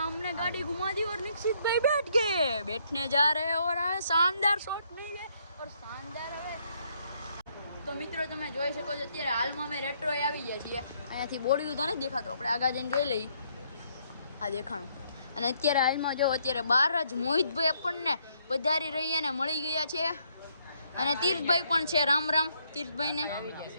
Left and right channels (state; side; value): inverted; both; correlation -0.71